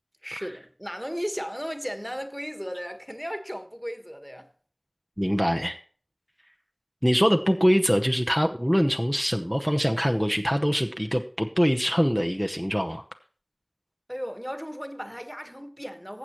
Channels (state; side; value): identical; both; correlation 1.00